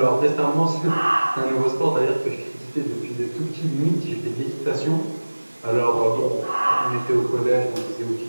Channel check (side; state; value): both; inverted; correlation -1.00